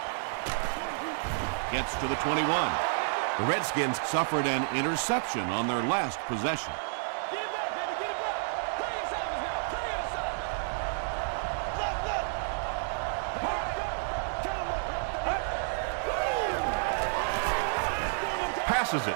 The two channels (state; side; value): silent; left; 57 dB below the other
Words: Gets to the 21. The Redskins suffered an interception on their last possession. Passes